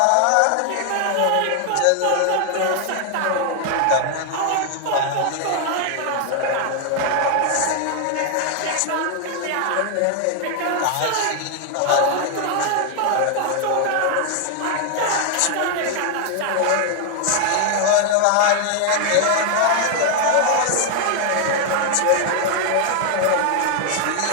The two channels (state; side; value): different; both; correlation 0.00